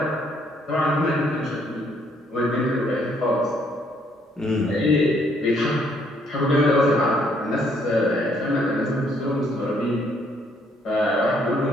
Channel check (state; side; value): normal; both; correlation 0.68